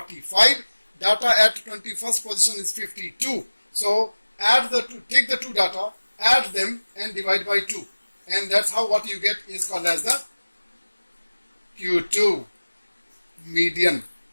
data at 21st position is 52. So add the two, take the two data, add them and divide by 2, and that's how what you get is called as the Q2 median.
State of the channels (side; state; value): both; inverted; correlation -1.00